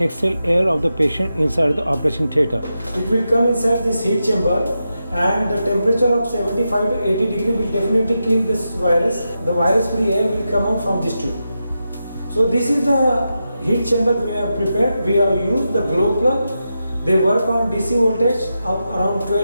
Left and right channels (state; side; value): inverted; both; correlation -0.88